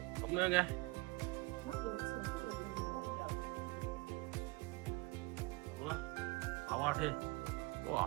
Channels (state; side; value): quieter; left; 24.1 dB